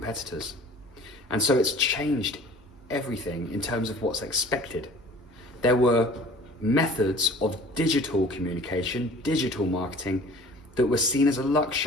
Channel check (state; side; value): normal; both; correlation 0.47